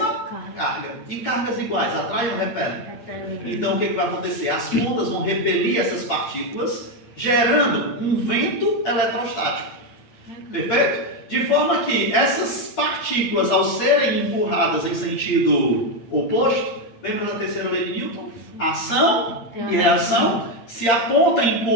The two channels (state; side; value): late; right; 8.8 ms